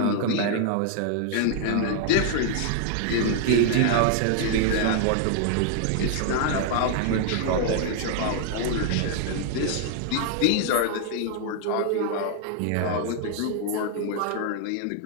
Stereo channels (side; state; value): both; different; correlation 0.00